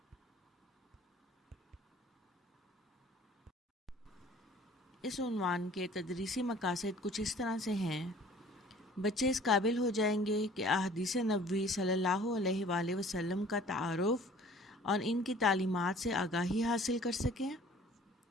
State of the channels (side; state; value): both; normal; correlation 0.51